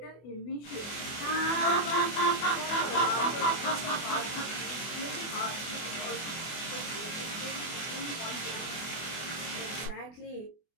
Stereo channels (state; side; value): late; right; 24 ms